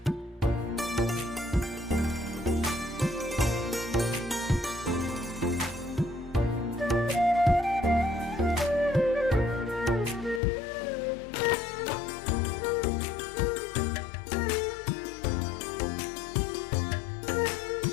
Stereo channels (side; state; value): right; drops out; at 10.4 s